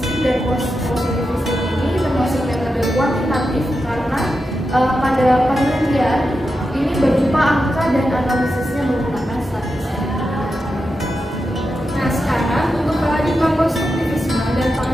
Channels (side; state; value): both; normal; correlation 0.89